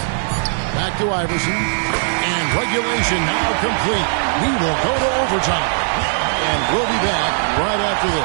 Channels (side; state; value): left; silent; 58 dB below the other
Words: Back to Iverson. And regulation now complete. We will go to overtime. And we'll be back right after